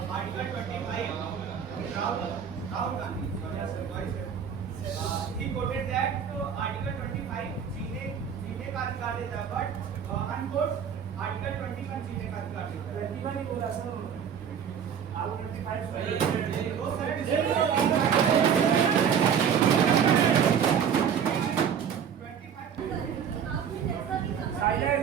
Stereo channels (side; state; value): left; quieter; 7.8 dB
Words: Article 25, Rahul Gandhi. He quoted that Article 25 जीने का अधिकार देता है, but unquote Article 21 जीने का अधिकार देता है। 21 ही बोला सर, आप 25